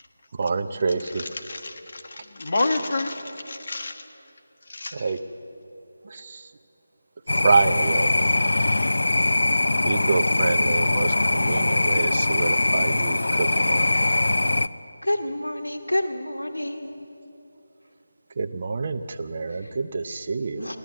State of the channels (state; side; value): inverted; both; correlation -0.95